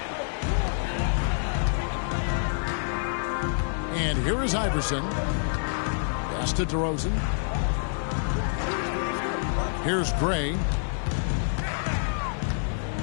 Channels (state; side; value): silent; right; digital silence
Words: And here is Iverson. Pass to DeRozan. Here's Gray.